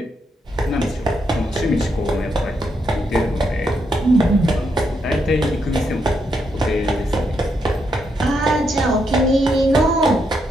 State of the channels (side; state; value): both; normal; correlation 0.79